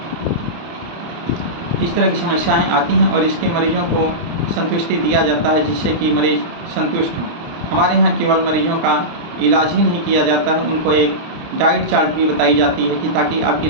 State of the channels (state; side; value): late; left; 29 ms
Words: इस तरह की समस्याएं आती हैं और इसके मरीजों को संतुष्टि दिया जाता है जिससे कि मरीज़ संतुष्ट हों। हमारे यहाँ केवल मरीजों का इलाज ही नहीं किया जाता है, उनको एक डाइट चार्ट भी बताई जाती है कि ताकि आपकी